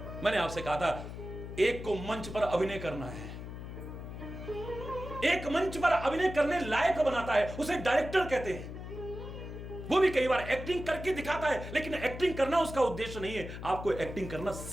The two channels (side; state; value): left; noise; hum, 9 dB below the sound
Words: मैंने आपसे कहा था, एक को मंच पर अभिनय करना है, एक मंच पर अभिनय करने लायक बनाता है, उसे डायरेक्टर कहते हैं। वो भी कई बार एक्टिंग करके दिखाता है, लेकिन एक्टिंग करना उसका उद्देश्य नहीं है। आपको एक्टिंग करना